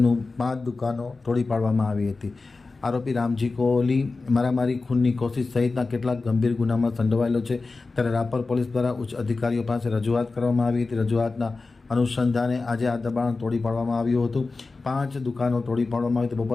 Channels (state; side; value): quieter; right; 3.8 dB